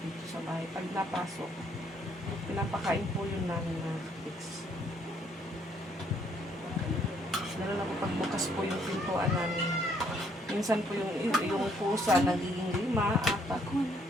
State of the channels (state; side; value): normal; both; correlation 0.68